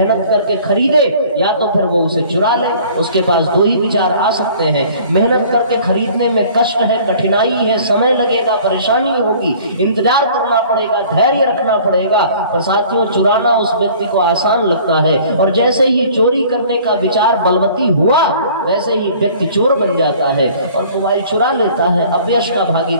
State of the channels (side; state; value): both; inverted; correlation -0.50